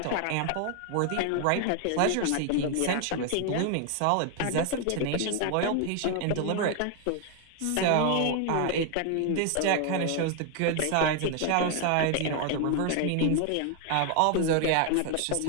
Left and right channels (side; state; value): both; different; correlation 0.01